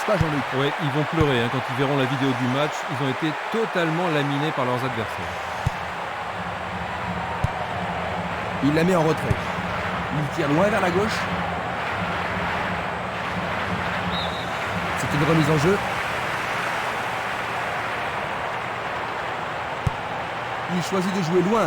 pas, Jean-Luc? Oui, ils vont pleurer quand ils verront la vidéo du match. Ils ont été totalement laminés par leurs adversaires. Il la met en retrait. Il tire loin vers la gauche. C'est une remise en jeu. Il choisit de jouer loin,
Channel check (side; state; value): both; identical; correlation 1.00